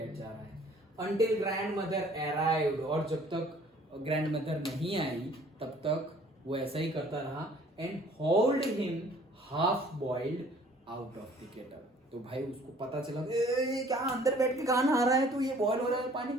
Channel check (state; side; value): normal; both; correlation 0.55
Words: जा रहा है। Until grandmother arrived, और जब तक ग्रैंड मदर नहीं आई तब तक वो ऐसा ही करता रहा। And hold him half boiled out of the kettle, तो भाई उसको पता चला ये क्या अंदर बैठ के कहाँ नहा रहा है, तो ये बॉयल हो रहा है पानी,